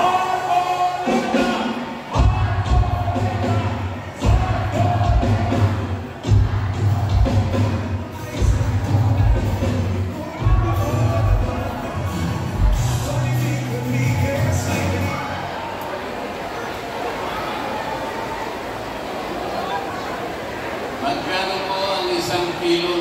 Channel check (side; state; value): both; identical; correlation 1.00